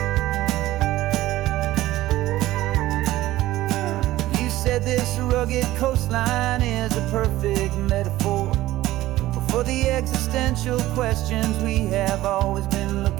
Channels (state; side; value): quieter; left; 16.0 dB